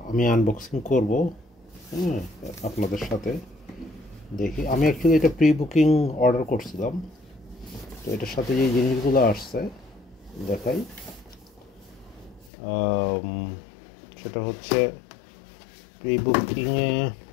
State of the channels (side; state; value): right; drops out; at 12.5 s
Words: আমি আনবক্সিং করব। হ্যাঁ, আপনাদের সাথে দেখি। আমি অ্যাকচুয়ালি এটা প্রি বুকিং অর্ডার করছিলাম। তো এটার সাথে যে জিনিসগুলো আসছে দেখাই। আম, সেটা হচ্ছে প্রি বুকিংয়ে